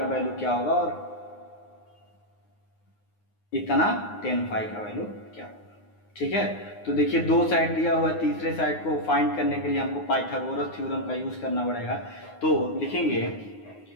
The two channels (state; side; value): late; right; 9.6 ms